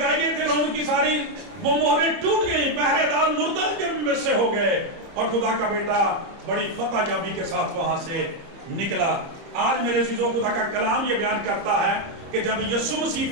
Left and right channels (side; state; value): left; late; 30 ms